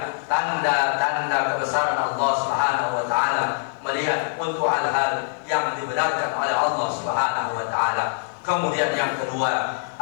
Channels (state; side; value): silent; right; digital silence